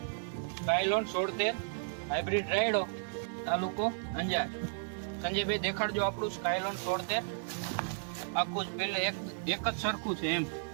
સ્કાયલોન 76 હાઇબ્રિડ રાયડો, તાલુકો અંજાર। સંજયભાઈ દેખાડજો આપણું સ્કાયલોન 76 આખું જ ફિલ્ડ એક જ સરખું છે એમ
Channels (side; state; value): left; silent; digital silence